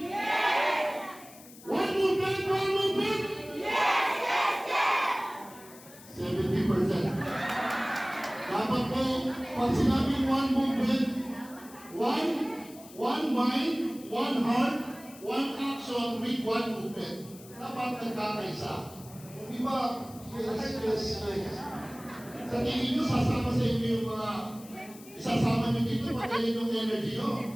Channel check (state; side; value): noise; left; hiss, 20 dB below the sound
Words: One movement, one movement? 70%. Dapat po, pag sinabing one movement, one mind, one heart, one action with one movement. Dapat nagkakaisa. Di ba? Yes. Sa tingin nyo, sasama sa inyo yung mga isasama nyo dito, patayin yung energy